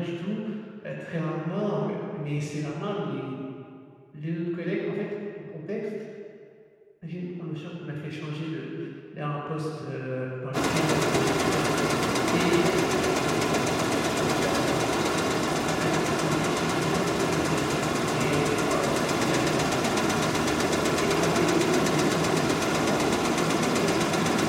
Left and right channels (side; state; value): both; identical; correlation 1.00